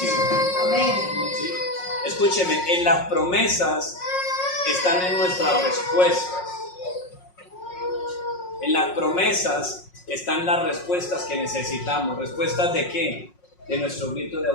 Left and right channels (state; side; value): late; right; 5.5 ms